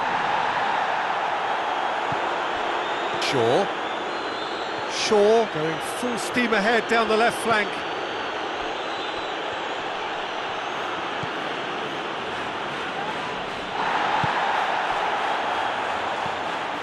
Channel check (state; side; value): identical; both; correlation 1.00